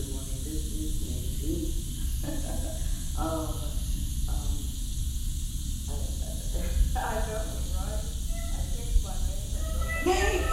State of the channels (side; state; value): both; identical; correlation 1.00